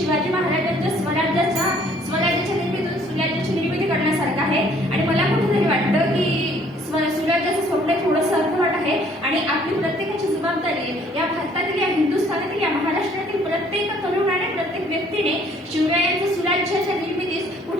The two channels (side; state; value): both; normal; correlation 0.60